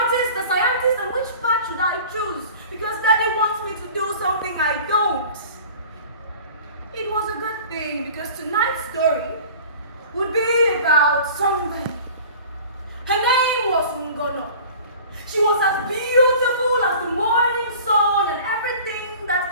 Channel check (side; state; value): both; inverted; correlation -0.43